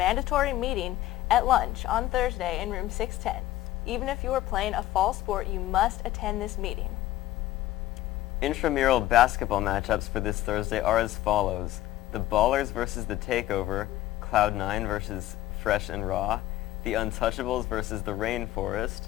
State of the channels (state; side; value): quieter; right; 15.1 dB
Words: meeting at lunch on Thursday in room 610. Even if you are playing a fall sport, you must attend this meeting. Intramural basketball matchups for this Thursday are as follows: the Ballers versus the Takeover, Cloud9 versus Fresh and Raw, the Untouchables versus the Rainforest,